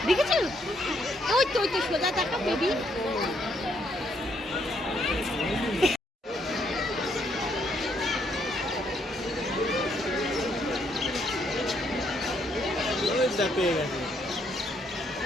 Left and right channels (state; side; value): normal; both; correlation 0.72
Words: দেখেছো? ওই তো সোজা দেখা বেবি। পেয়ে গেছে,